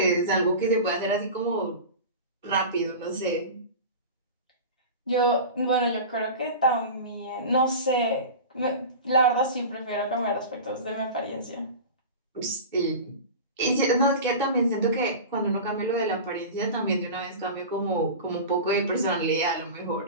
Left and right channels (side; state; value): both; inverted; correlation -0.31